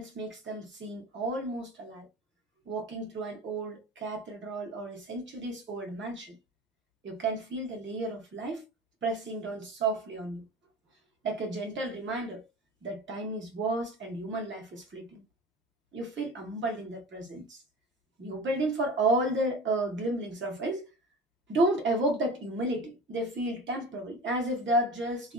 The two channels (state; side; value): normal; both; correlation 0.35